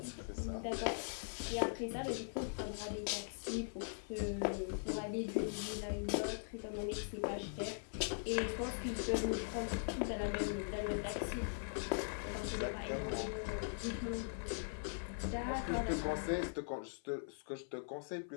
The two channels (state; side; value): silent; right; 50 dB below the other